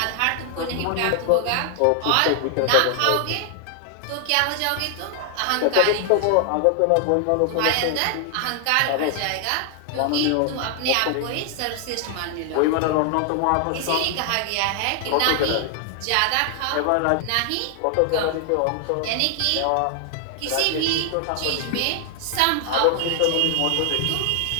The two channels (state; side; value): different; both; correlation 0.00